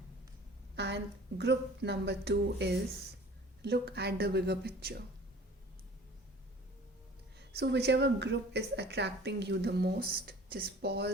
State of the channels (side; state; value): both; normal; correlation 0.46